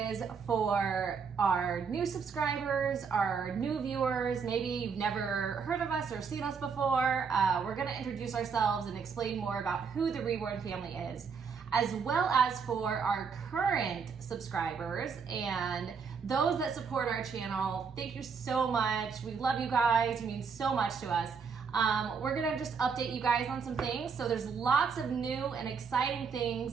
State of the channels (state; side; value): quieter; left; 5.8 dB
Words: for our new subscribers, our new viewers. Maybe you've never heard of us or seen us before. We're going to introduce ourselves and explain more about who the Reborn family is, as well as for our current subscribers and those that support our channel. Thank you so much. We love you guys. You mean so much to us. We're gonna just update you guys on some things. So there's lots of new and exciting